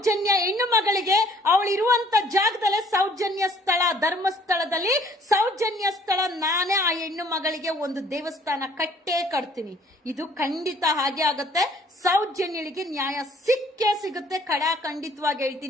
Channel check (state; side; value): normal; both; correlation 0.58